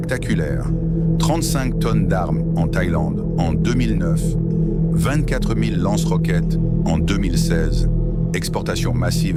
35 tonnes d'armes en Thaïlande en 2009, 24 000 lance-roquettes en 2016, exportation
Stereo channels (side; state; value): both; identical; correlation 1.00